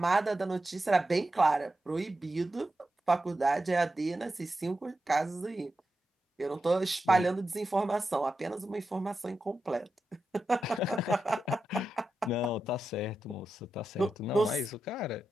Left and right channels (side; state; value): both; normal; correlation 0.89